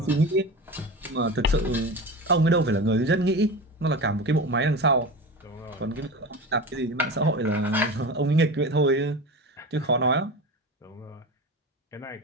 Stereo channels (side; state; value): both; normal; correlation 0.28